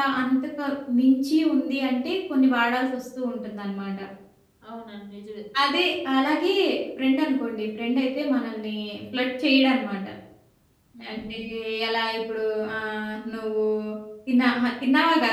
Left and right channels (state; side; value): identical; both; correlation 1.00